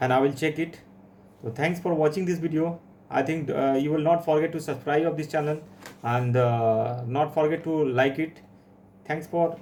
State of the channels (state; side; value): identical; both; correlation 1.00